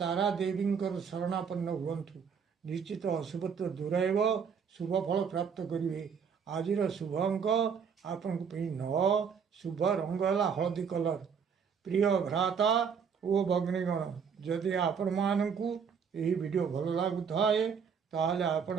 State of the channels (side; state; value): left; quieter; 6.7 dB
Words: ଦେବୀଙ୍କର ଶରଣାପନ୍ନ ହୁଅନ୍ତୁ। ନିଶ୍ଚିତ ଅଶୁଭତ୍ୱ ଦୂର ହେବ, ଶୁଭ ଫଳ ପ୍ରାପ୍ତ କରିବେ। ଆଜିର ଶୁଭ ଅଙ୍କ ଆପଣଙ୍କ ପାଇଁ 9, ଶୁଭ ରଙ୍ଗ ହେଲା ହଳଦୀ କଲର। ପ୍ରିୟ ଭ୍ରାତା ଓ ଭଗ୍ନୀଗଣ, ଯଦି ଆପଣମାନଙ୍କୁ ଏହି ଭିଡ଼ିଓ ଭଲ ଲାଗୁଥାଏ ତାହେଲେ ଆପଣ